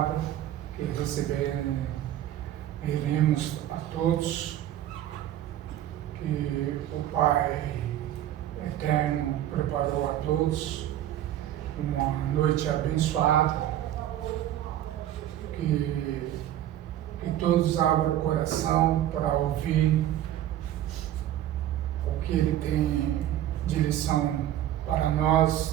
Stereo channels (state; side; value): quieter; left; 12.3 dB